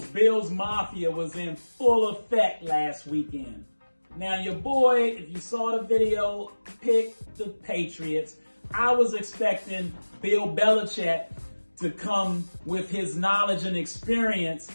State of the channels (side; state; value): both; inverted; correlation -1.00